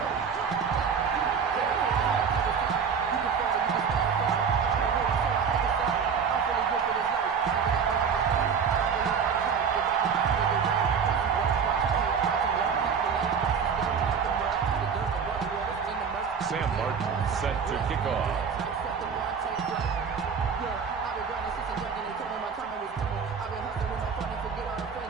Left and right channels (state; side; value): quieter; left; 6.5 dB